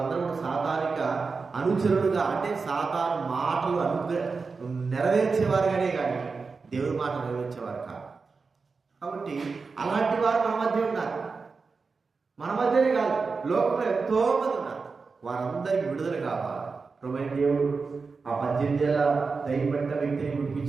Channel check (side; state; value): left; quieter; 4.6 dB